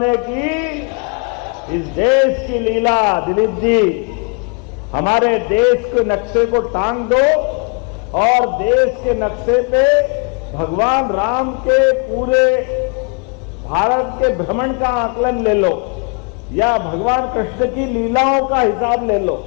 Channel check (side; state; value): right; quieter; 35.4 dB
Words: की। इस देश की लीला दिलीप जी, हमारे देश के नक्शे को टांग दो और देश के नक्शे पे भगवान राम के पूरे भारत के भ्रमण का आकलन ले लो या भगवान कृष्ण की लीलाओं का हिसाब ले लो।